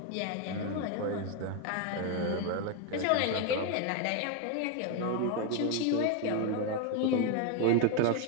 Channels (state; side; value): different; both; correlation 0.01